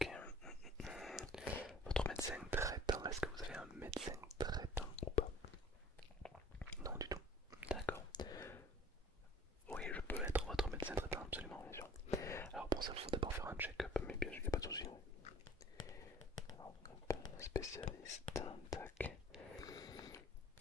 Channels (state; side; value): normal; both; correlation 0.50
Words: Votre médecin traitant, est-ce que vous avez un médecin traitant ou pas? Non du tout. D'accord. Oui, je peux être votre médecin traitant, absolument, bien sûr. Alors pour ça, il faut d'abord faire un check-up, mais bien sûr, il n'y a pas de souci. Alors, hop, spécialiste, tac.